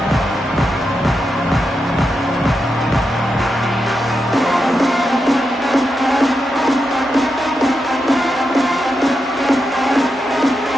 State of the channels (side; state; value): both; normal; correlation 0.87